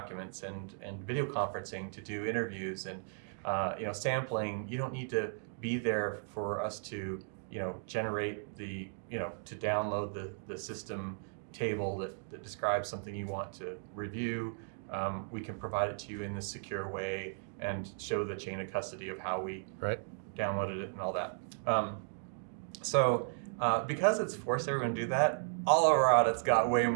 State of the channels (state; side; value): silent; left; digital silence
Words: and video conferencing to do interviews, and sampling. You don't need to be there for us to generate to download the system table that describes something you want to review. We can provide it to you in a secure way and show the chain of custody of how we downloaded it and all that. Because it's forced everyone to do that, all of our audits got way